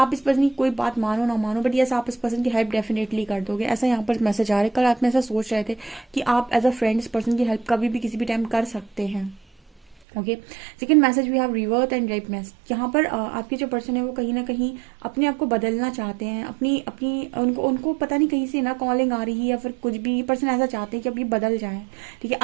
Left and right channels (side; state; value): left; drops out; at 10.0 s